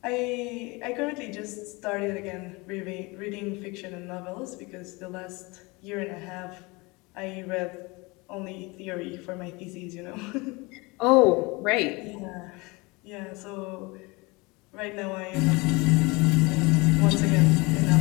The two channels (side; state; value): right; quieter; 25.6 dB